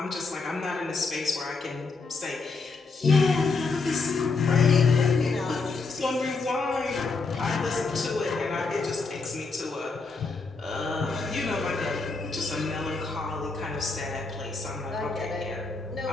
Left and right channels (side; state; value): right; quieter; 4.1 dB